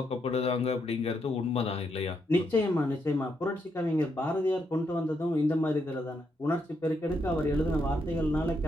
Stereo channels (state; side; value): normal; both; correlation 0.79